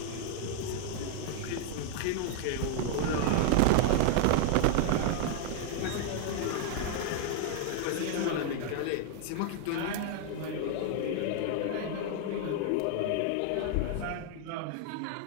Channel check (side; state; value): both; different; correlation 0.00